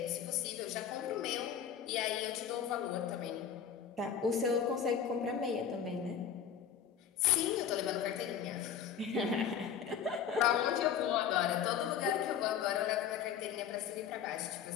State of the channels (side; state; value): right; quieter; 8.3 dB